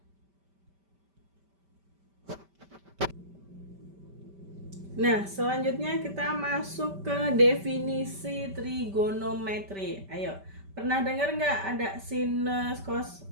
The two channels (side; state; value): left; late; 5.1 ms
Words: Nah, selanjutnya kita masuk ke definisi trigonometri. Ayo, pernah dengar nggak ada sinus,